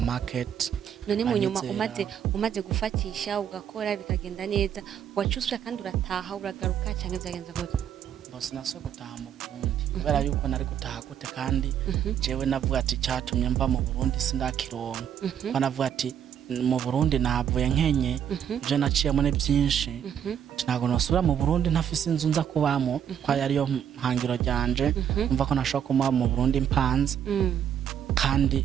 none mu nyuma umaze gufatisha ugakora bikagenda neza wacusura kandi urataha uragaruka cyangwa zagenza gute bose naso gutaha mu Burundi kubera yuko nari gutaha gute kandi jewe navuga ati cyatumye mva mu Burundi sindakironka banavuga ati mu Burundi navuye nkenye je naciyemo ne byinshi ntago nosubira mu Burundi ntafise inzu nza kubamo kwa yari yo mpangiro ryanje umva ko nashaka kuma mu Burundi mpanze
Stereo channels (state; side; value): quieter; left; 9.1 dB